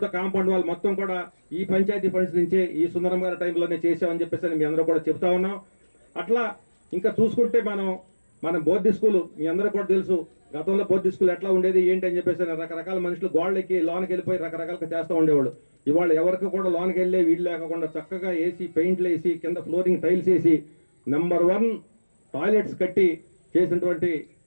కాంపౌండ్ వాళ్ళు మొత్తం కూడా ఈ పంచాయతీ ఫండ్స్ నుంచే ఈ సుందరం గారి టైంలోనే చేసామని చెప్పేసి మీ అందరూ కూడా చెప్తా ఉన్నాం. అట్లా ఇంకా చూసుకుంటే మన బోర్డు స్కూలు మీ అందరూ కూడా తెలుసు. గతంలో బోర్డు స్కూల్ ఎట్లా ఉండేది ఏంటి అని చెప్పేసి రకరకాల మనుషులు గోళ్ళకి లోనికి వెళ్ళిపోయి రకరకాలుగా చేస్తూ ఉండేవాళ్ళు. ఇవాళ ఎవరికి కూడా లోనికి వెళ్ళే వీళ్ళు లేకుండా చక్కగా వేసి పెయింట్లు వేసి కింద ఫ్లోరింగ్ టైల్స్ వేసి నెంబర్ 1 టాయిలెట్స్ కట్టి చేసినటువంటి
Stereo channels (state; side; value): inverted; both; correlation -1.00